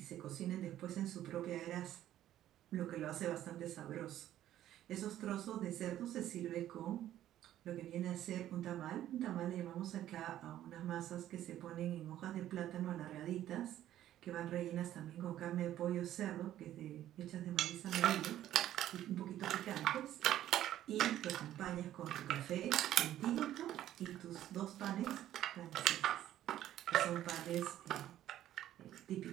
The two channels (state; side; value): quieter; left; 12.5 dB